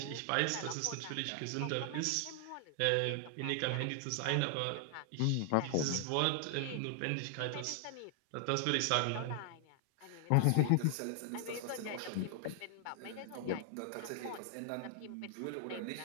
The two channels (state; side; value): different; both; correlation 0.00